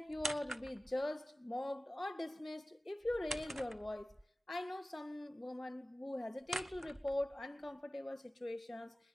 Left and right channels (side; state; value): both; normal; correlation 0.96